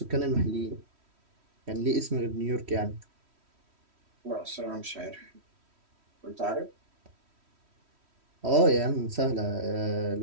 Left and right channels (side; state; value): left; late; 3.1 ms